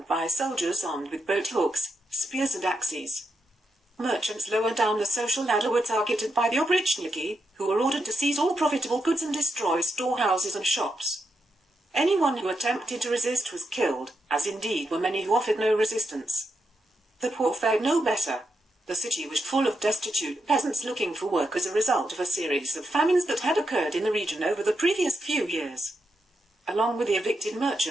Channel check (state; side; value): normal; both; correlation 0.84